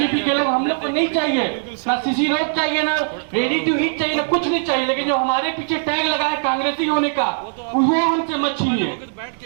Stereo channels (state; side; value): silent; left; digital silence